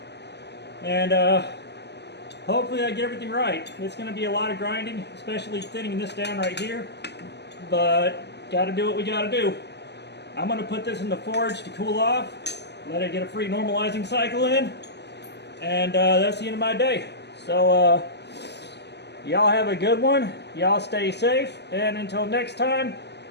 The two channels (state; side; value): late; right; 0.50 ms